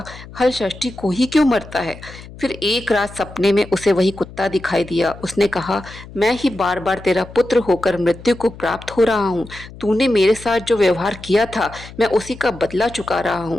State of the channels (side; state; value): left; noise; hum, 17 dB below the sound